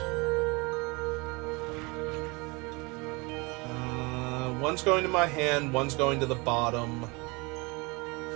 One's going to my hand, one's going to the bottom.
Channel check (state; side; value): quieter; left; 27.3 dB